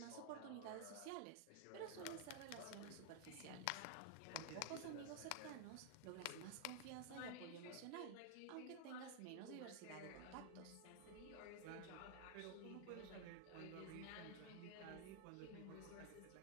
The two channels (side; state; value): both; different; correlation 0.00